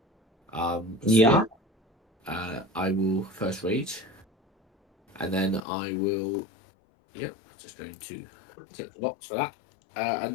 guards. Yeah. I will first rage, and then I will. Yep, just going to tick the box for that. And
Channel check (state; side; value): drops out; right; at 5.6 s